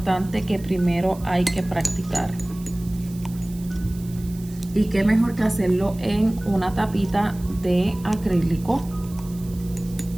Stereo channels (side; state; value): right; noise; hiss, 21 dB below the sound